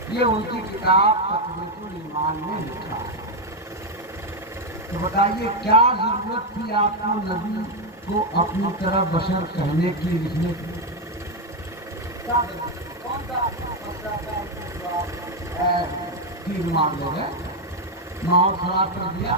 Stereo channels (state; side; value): normal; both; correlation 0.04